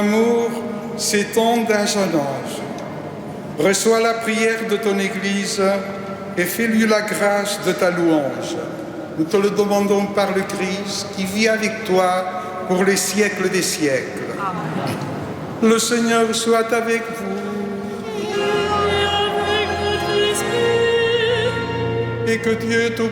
s'étend d'âge en âge. Reçois la prière de ton Église et fais-lui la grâce de ta louange. Nous te le demandons par le Christ qui vit avec toi pour les siècles des siècles. Le Seigneur soit avec vous Et avec votre esprit, et que Dieu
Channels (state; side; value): identical; both; correlation 1.00